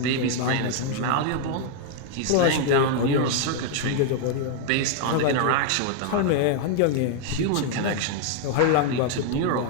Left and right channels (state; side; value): different; both; correlation 0.00